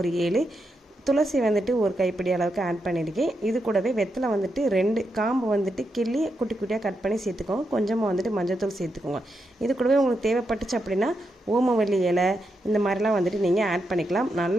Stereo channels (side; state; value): both; normal; correlation 0.84